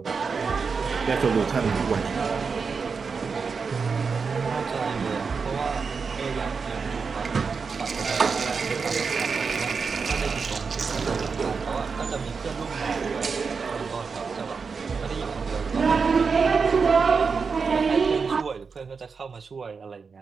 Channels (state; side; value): quieter; left; 5.2 dB